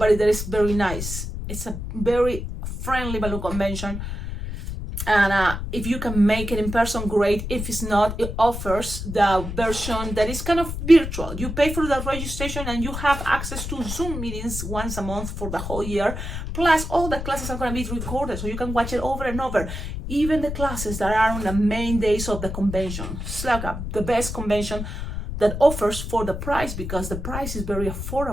there is very nice. It's a very friendly balloon convention, and if you can make it in person, great. If it's not, it offers the version that is kind of virtual. You pay for the registration and you have access to Zoom meetings once a month for the whole year, plus all the classes are going to be recorded, so you can watch it over and over, even the classes that are on the main days of the convention. It's like the best convention that offers for the price, because the price is very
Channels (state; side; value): noise; left; rumble, 6 dB below the sound